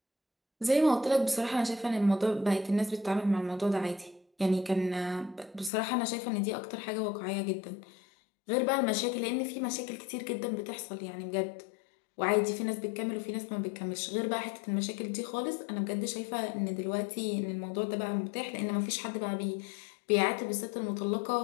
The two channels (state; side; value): drops out; right; at 5.7 s